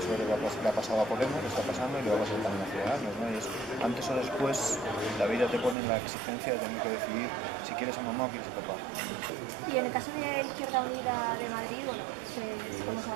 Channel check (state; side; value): drops out; left; at 5.8 s